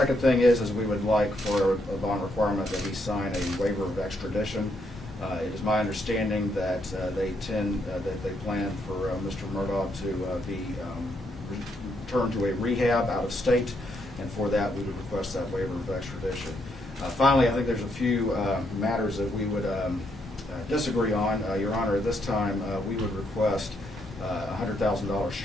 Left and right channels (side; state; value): both; normal; correlation 0.76